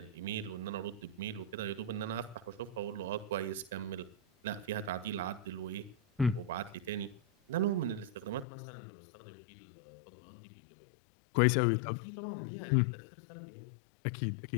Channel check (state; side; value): drops out; right; at 8.5 s